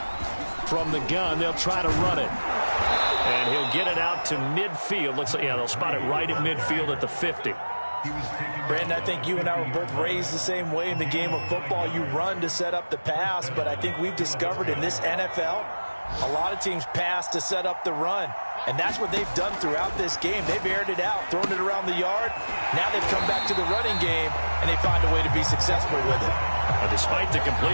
From the gun, they'll try to run it. And he'll get it out to midfield. Looks like, yeah, they'll spot it right at midfield at the 50. Brandon, I think you and I were both raised the same way in the game of football. You run to set up the pass, but I think we've discovered in this NFL, a lot of teams pass to set up the run. And that's what they've done throughout this game. They've aired it out, thrown it around the yard. Now they've come back to the running game, and they find a way to be successful with it. Despite the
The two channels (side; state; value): both; inverted; correlation -1.00